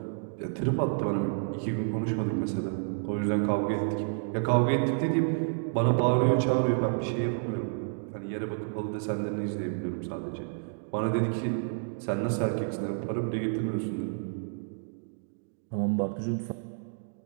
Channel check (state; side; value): silent; left; digital silence